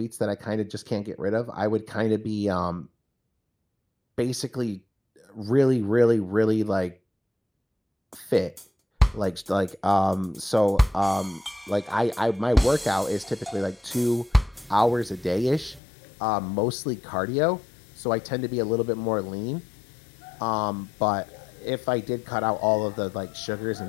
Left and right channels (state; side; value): drops out; right; at 15.8 s